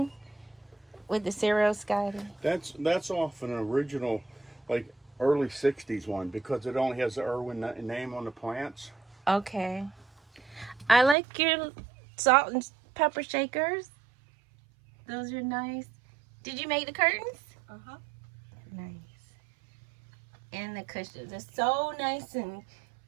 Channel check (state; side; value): drops out; left; at 11.2 s